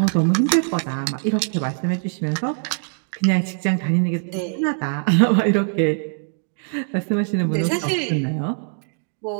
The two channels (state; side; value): silent; left; 64 dB below the other